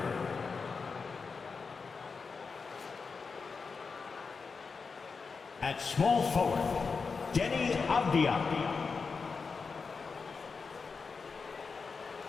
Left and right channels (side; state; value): right; quieter; 4.9 dB